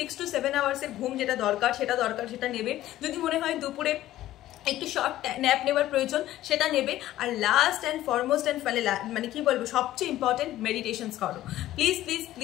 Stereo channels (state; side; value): quieter; right; 14.3 dB